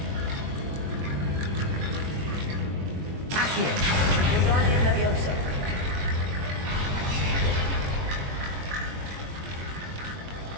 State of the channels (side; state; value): left; late; 22 ms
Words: Accio. Guardian Leviosa.